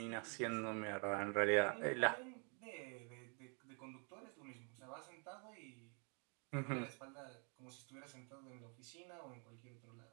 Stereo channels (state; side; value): quieter; left; 37.3 dB